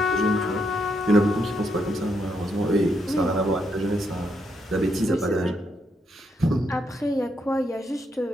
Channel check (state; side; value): normal; both; correlation 0.78